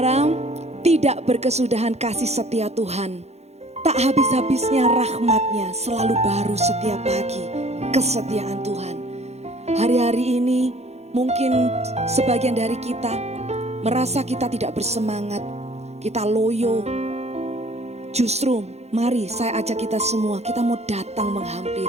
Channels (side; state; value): left; late; 0.31 ms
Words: tidak berkesudahan kasih setia Tuhan. Tak habis-habisnya rahmatnya, selalu baru setiap pagi kesetiaan Tuhan. Hari-hari ini mungkin sebagian dari kita merasa kita tidak bersemangat, kita loyo. Justru mari saya ajak kita semua, kita mau datang